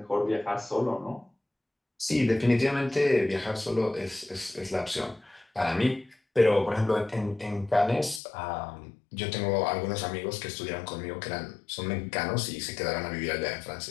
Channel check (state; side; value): drops out; right; at 8.2 s